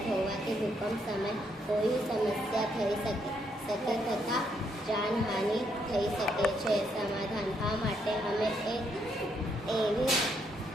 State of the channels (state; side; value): normal; both; correlation 0.75